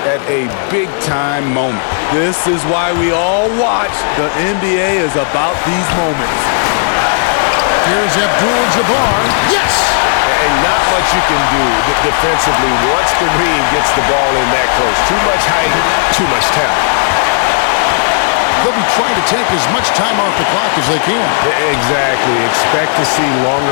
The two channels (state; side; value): silent; right; digital silence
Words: at a big-time moment. This is why we all watch. The NBA is about these moments. Here's Abdul-Jabbar. Yes! And not much you can do defensively once Kareem gets the ball in that close. Too much height, too much talent. They'll be trying to take as much time off the clock as they can. Exactly. Expect to see